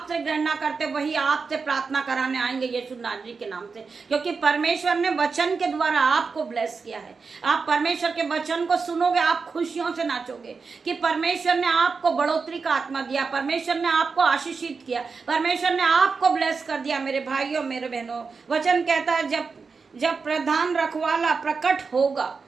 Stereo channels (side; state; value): left; quieter; 4.9 dB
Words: घृणा करते वही आपसे प्रार्थना कराने आएंगे यीशु नाजरी के नाम से, क्योंकि परमेश्वर ने वचन के द्वारा आपको ब्लेस किया है। आप परमेश्वर के वचन को सुनोगे, आप खुशियों से नाचोगे कि परमेश्वर ने आपको बढ़ोतरी का आत्मा दिया, परमेश्वर ने आपको आशीषित किया, परमेश्वर ने आपको ब्लेस कर दिया। मेरे भाइयों मेरे बहनों, वचन कहता है जब प्रधान रखवाला प्रकट होगा,